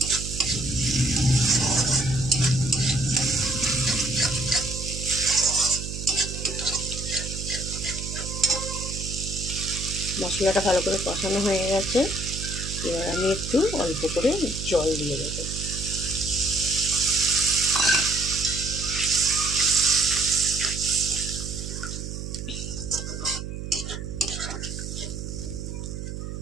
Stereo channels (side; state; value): right; noise; hum, 7 dB below the sound